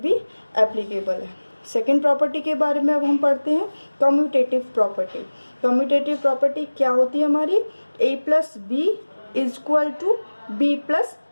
एप्लीकेबल है। सेकेंड प्रॉपर्टी के बारे में अब हम पढ़ते हैं कम्यूटेटिव प्रॉपर्टी। कम्यूटेटिव प्रॉपर्टी क्या होती है हमारी? a plus b equal to b plus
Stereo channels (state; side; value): inverted; both; correlation -1.00